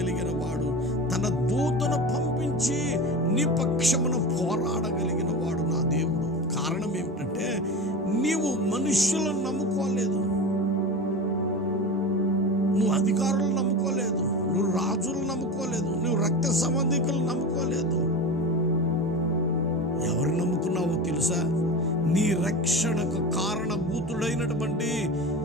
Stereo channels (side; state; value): both; normal; correlation 0.28